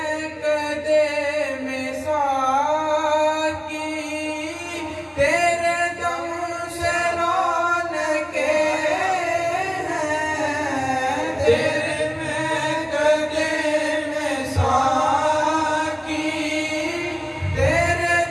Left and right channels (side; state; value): both; identical; correlation 1.00